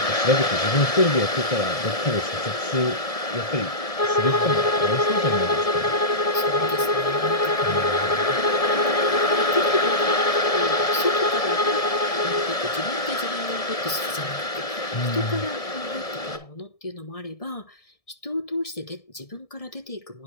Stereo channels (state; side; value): late; right; 1.7 ms